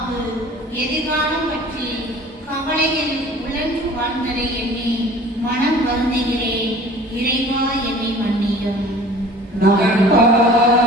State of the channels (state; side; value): normal; both; correlation 0.46